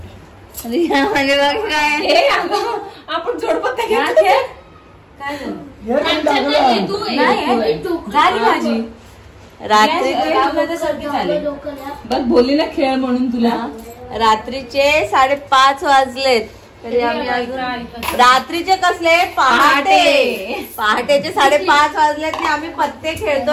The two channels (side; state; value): both; identical; correlation 1.00